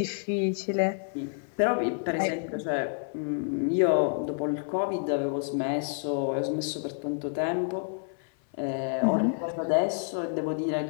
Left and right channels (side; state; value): right; silent; 59 dB below the other